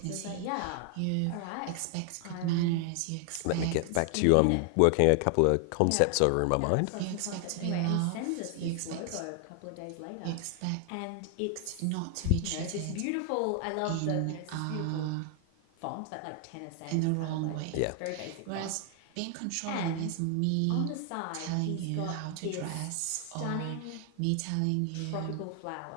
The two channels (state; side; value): different; both; correlation 0.00